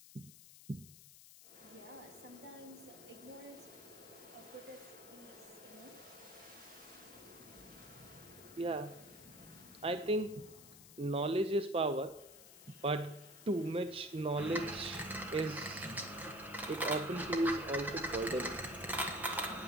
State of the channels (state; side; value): noise; left; hiss, 18 dB below the sound